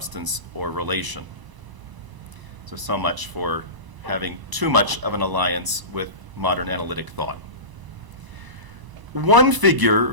or relation. So much for having too much of an alliance with modern analytic thought. One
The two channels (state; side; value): late; left; 1.0 ms